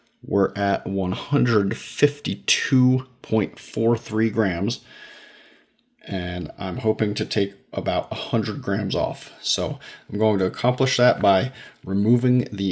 We're at 152.43 grams. And I'm hoping to take about 100 grams off. So I'm going to accomplish that by removing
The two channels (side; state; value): both; identical; correlation 1.00